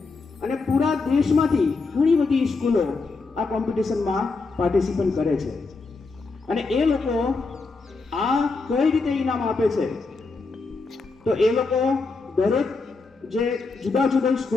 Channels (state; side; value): quieter; right; 4.0 dB